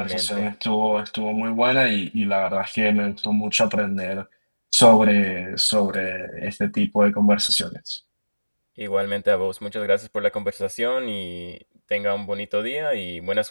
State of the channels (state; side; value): inverted; both; correlation -1.00